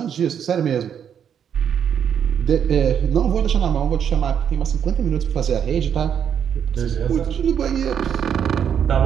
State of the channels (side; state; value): left; quieter; 8.4 dB